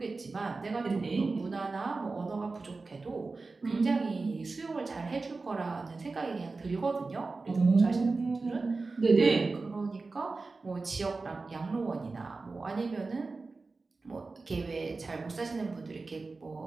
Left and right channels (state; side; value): quieter; left; 3.8 dB